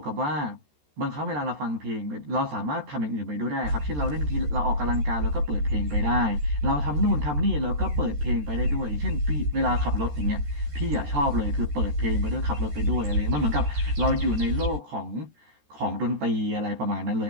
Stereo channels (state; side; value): late; left; 13 ms